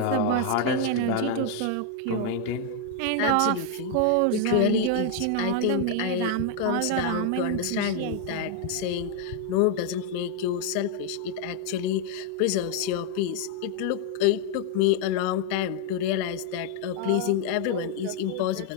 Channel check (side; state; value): both; different; correlation 0.00